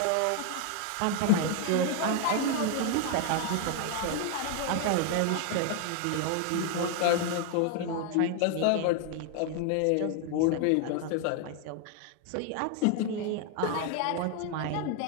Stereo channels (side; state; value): both; different; correlation 0.00